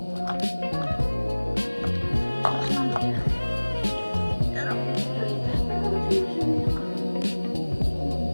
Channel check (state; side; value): inverted; both; correlation -1.00